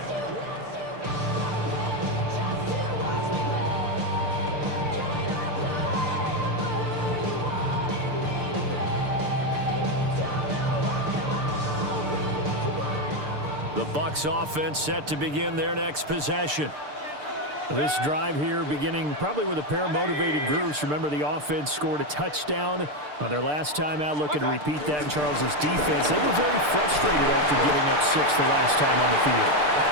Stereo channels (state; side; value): late; left; 6.7 ms